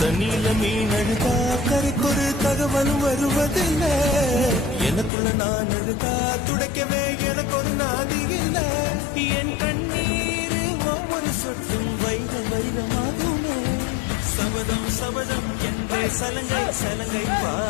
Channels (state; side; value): drops out; right; at 5.1 s